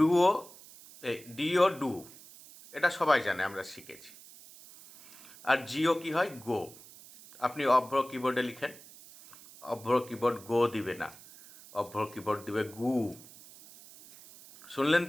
ডিও ডু, এটা সবাই জানে, আমরা শিখেছি। আর জিও কি হয়? গো। আপনি অভ্র কিবোর্ডে লিখেন, অভ্র কিবোর্ড গো দিবে না, অভ্র কিবোর্ড দিবে গু। শুনলেন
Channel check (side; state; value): right; noise; hiss, 20 dB below the sound